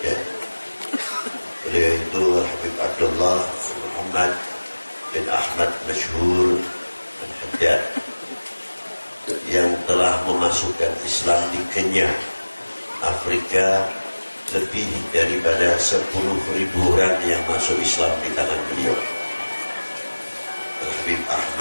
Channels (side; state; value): both; inverted; correlation -1.00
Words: Beliau itu Al-Habib Abdullah Muhammad bin Ahmad Masyhur Al-Haddad yang telah memasukkan Islam di Kenya, Afrika, lebih daripada 10.000 orang yang masuk Islam di tangan beliau. Al-Habib